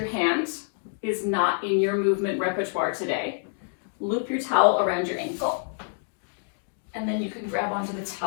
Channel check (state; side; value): silent; right; digital silence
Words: hand is not in your movement repertoire today, loop your towel around your ankle. And then you can grab onto the